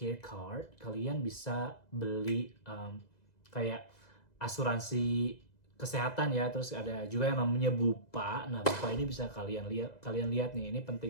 card, kalian bisa beli kayak asuransi kesehatan ya. Terus ada juga yang namanya Bupa. Nah, Bupa ini bisa kalian lihat nih, ini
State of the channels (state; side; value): late; right; 2.0 ms